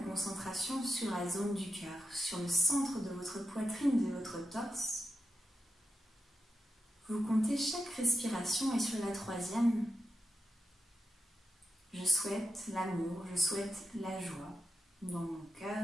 concentration sur la zone du cœur, sur le centre de votre poitrine, de votre torse. Vous comptez chaque respiration et sur la troisième, je souhaite l'amour, je souhaite la joie dans mon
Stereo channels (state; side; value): normal; both; correlation 0.88